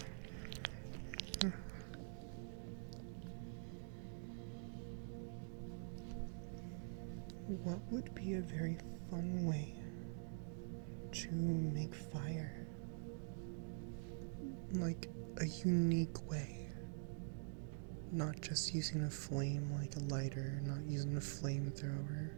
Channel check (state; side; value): silent; left; digital silence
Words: What would be a very fun way to make fire? Like a unique way. Not just using a flame like a lighter, not using a flamethrower,